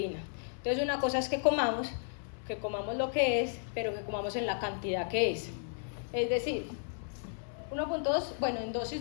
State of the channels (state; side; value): silent; right; 55 dB below the other